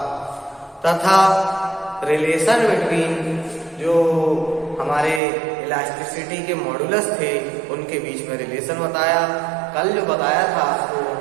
तथा रिलेशन बिटवीन जो हमारे इलास्टिसिटी के मॉडुलस थे उनके बीच में रिलेशन बताया। कल जो बताया था उसको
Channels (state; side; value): drops out; left; at 5.2 s